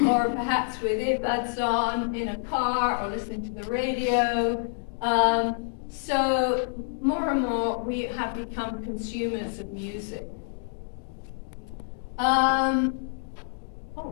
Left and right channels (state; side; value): silent; right; digital silence